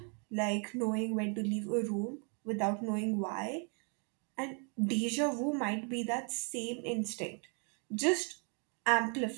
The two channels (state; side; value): quieter; left; 38.6 dB